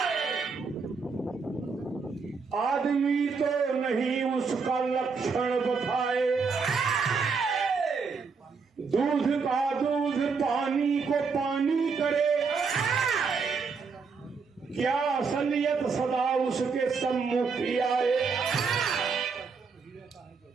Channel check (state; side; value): quieter; left; 5.1 dB